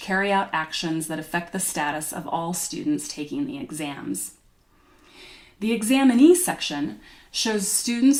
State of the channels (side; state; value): both; identical; correlation 1.00